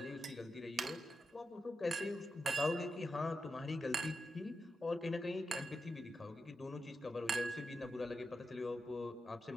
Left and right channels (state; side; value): normal; both; correlation 0.88